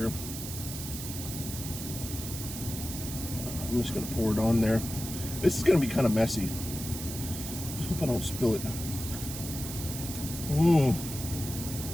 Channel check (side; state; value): right; noise; hiss, 8 dB below the sound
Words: I'm just gonna pour it on there. This is gonna be kind of messy. Just hope I don't spill it. Mmm.